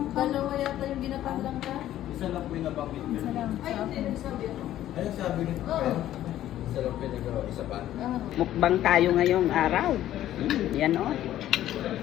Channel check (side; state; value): right; quieter; 12.9 dB